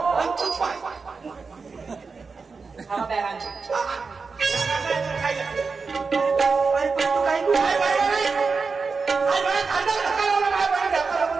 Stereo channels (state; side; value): quieter; left; 4.7 dB